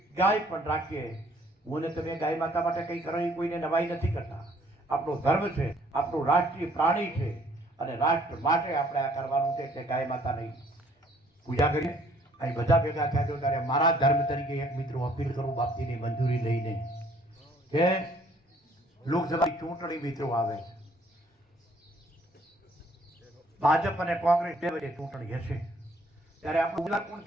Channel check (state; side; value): normal; both; correlation 0.61